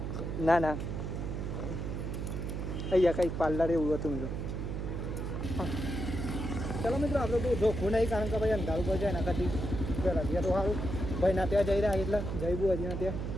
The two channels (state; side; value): noise; right; hum, 3 dB below the sound